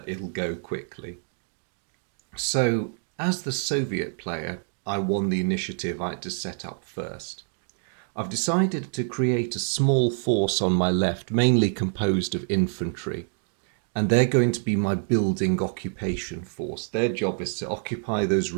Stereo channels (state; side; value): silent; left; 61 dB below the other